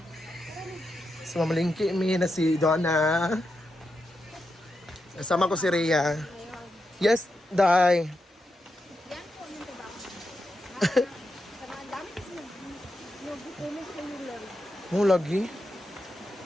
So mamalingki kami na si Donna. Kasama ko si Rhea. Yes, Day. Yan po yung trabaho. Sa mga dami kasi nag-comment kayo lang. Mo lagi.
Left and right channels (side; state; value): both; normal; correlation 0.86